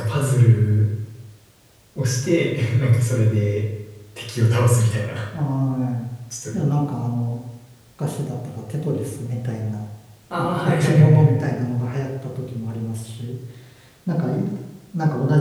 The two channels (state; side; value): identical; both; correlation 1.00